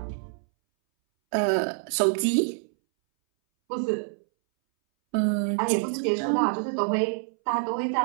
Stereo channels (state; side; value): silent; left; 61 dB below the other